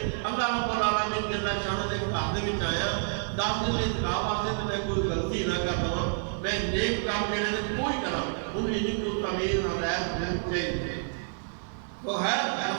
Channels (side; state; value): left; silent; digital silence